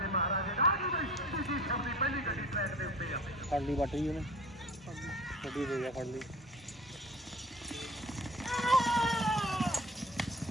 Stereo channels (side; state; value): both; normal; correlation 0.42